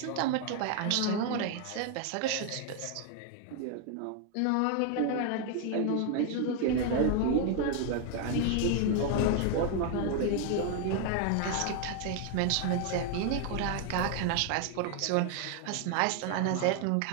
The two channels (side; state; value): both; different; correlation 0.00